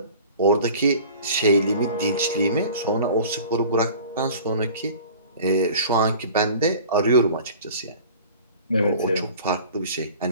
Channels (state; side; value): inverted; both; correlation -0.44